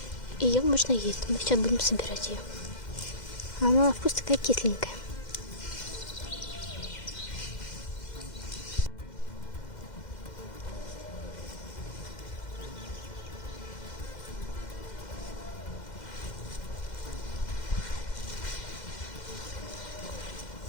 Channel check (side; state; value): right; late; 2.1 ms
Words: Ее можно есть. Мы сейчас будем собирать ее. Она на вкус такая кисленькая.